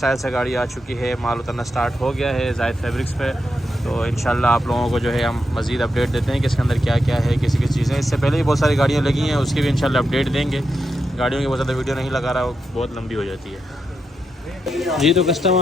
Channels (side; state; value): both; normal; correlation 0.85